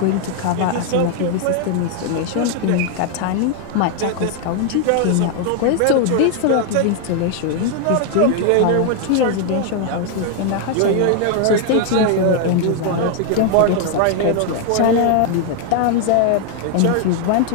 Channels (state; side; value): different; both; correlation 0.00